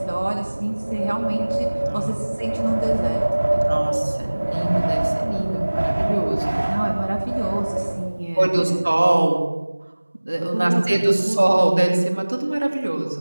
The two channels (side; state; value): both; inverted; correlation -1.00